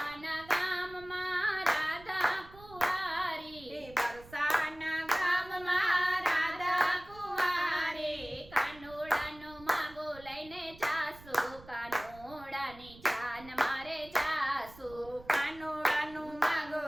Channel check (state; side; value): noise; right; rumble, 20 dB below the sound